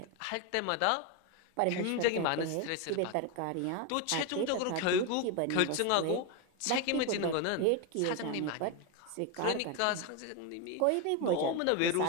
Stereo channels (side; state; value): both; different; correlation 0.02